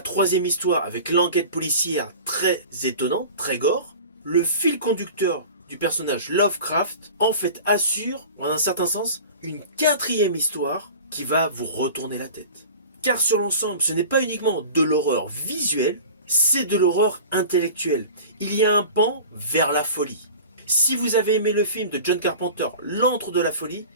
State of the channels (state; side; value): inverted; both; correlation -0.38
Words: troisième histoire avec l'enquête policière très étonnante, très gore, le fil conducteur du personnage Lovecraft en fait assure, en un certain sens, une quatrième histoire qui va vous retourner la tête. Car sur l'ensemble, ce n'est pas uniquement de l'horreur visuelle, c'est de l'horreur intellectuelle. Il y a un pan vers la folie. Si vous avez aimé le film de John Carpenter, L'Antre de la Folie,